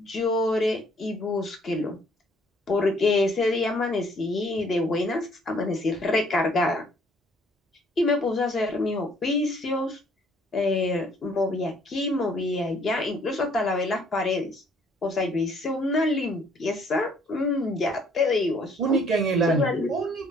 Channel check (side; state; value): both; normal; correlation 0.61